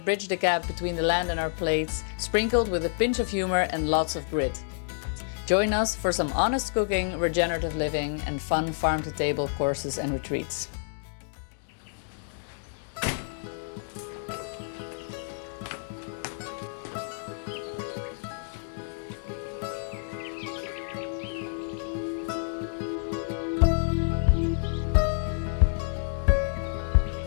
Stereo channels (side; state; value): right; silent; digital silence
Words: bridge the gap between the land and our plates, sprinkled with a pinch of humor and lots of grit. Join us for some honest cooking, regenerative living and fun farm-to-table courses and retreats.